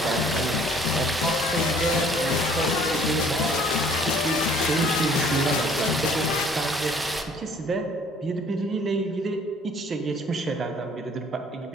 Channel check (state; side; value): normal; both; correlation 0.57